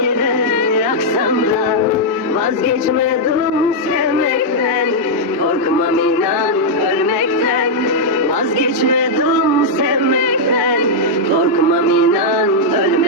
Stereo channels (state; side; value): normal; both; correlation -0.05